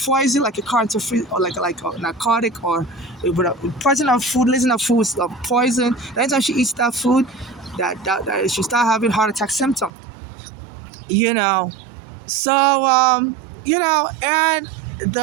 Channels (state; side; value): drops out; left; at 9.9 s